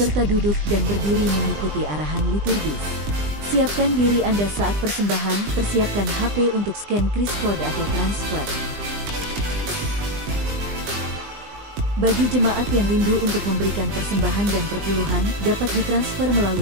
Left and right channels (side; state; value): left; late; 20 ms